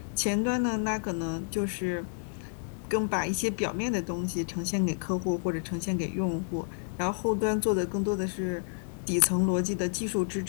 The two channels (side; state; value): right; silent; digital silence